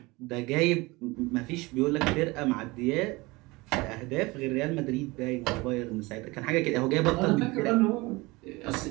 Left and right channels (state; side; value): quieter; left; 23.1 dB